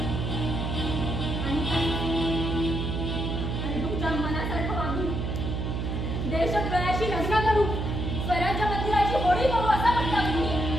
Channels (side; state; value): right; noise; hum, 2 dB below the sound